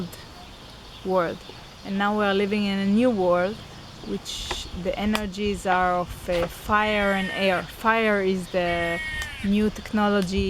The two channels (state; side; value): identical; both; correlation 1.00